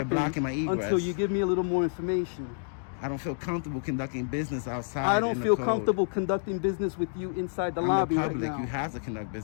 blocking my egress. until you give me a little more information. I don't feel comfortable conducting business outside. I don't in the feel cold. comfortable conducting business with you inside the I'm lobby the right public. now. You have to conduct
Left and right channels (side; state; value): right; silent; digital silence